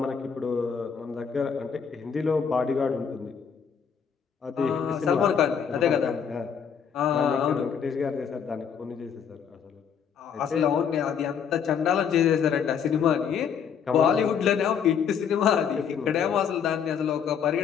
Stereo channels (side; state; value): right; quieter; 7.3 dB